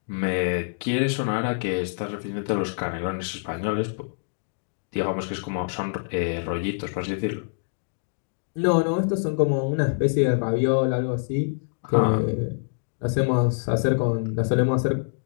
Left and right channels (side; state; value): right; silent; digital silence